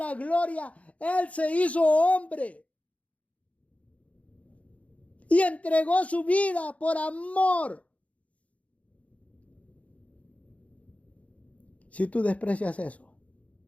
gloria, Él se hizo hombre. Y entregó su vida por amor. Si tú desprecias eso,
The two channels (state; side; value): late; right; 0.066 ms